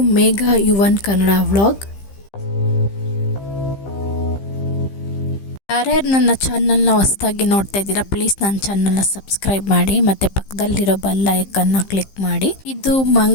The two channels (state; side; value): late; right; 15 ms